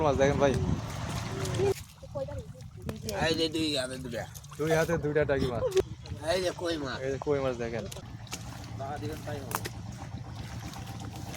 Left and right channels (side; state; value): both; identical; correlation 1.00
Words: মাছ দেখেন ভাই, এই যে দুই হাতে দুটা, দুই হাতে দুইটা টাকি মাছ। এই যে কই মাছ, এই যে কই মাছ দেখেন।